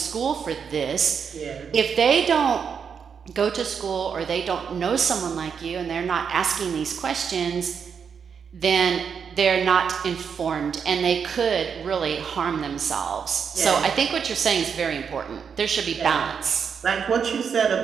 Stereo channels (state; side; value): quieter; left; 6.7 dB